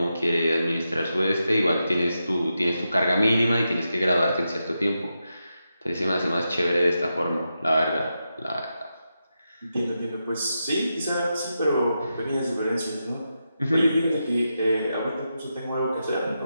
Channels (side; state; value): both; inverted; correlation -0.87